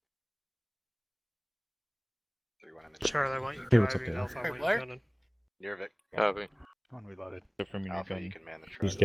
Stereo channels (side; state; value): both; identical; correlation 1.00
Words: 3-1 in the Charlie, I want you Hey, what's up, driving. Dave? Alpha, I want you Where? gunning. Nirvik. Copy. One reloaded. From your Alpha, gun. you can man the truck. Just